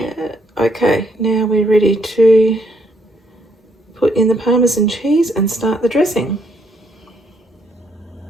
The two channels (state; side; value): normal; both; correlation 0.72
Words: Okay, now we're ready to put in the Parmesan cheese and start the dressing.